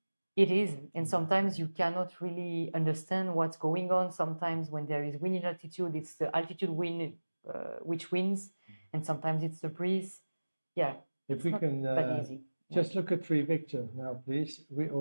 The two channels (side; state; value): both; inverted; correlation -1.00